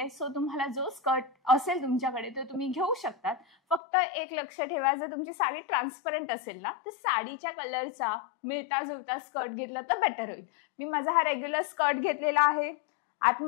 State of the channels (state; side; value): drops out; right; at 3.8 s